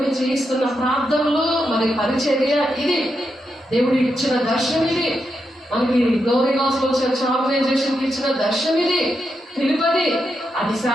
చేయిస్తున్న ప్రార్థనలు, మరి పరిచర్య ఇది. దేవుడు ఇచ్చిన దర్శనం ఇది. మనకి గ్లోరీ గాస్పెల్ చర్చ్ ఆర్గనైజేషన్కి ఇచ్చిన దర్శనం ఇది, పిలుపది. అది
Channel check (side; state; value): both; normal; correlation 0.84